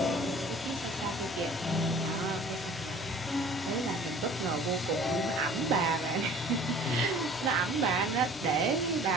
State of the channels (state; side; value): normal; both; correlation 0.48